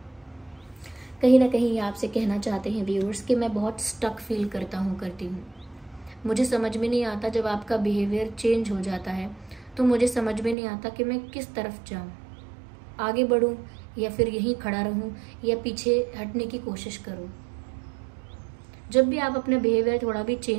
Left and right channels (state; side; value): drops out; left; at 10.6 s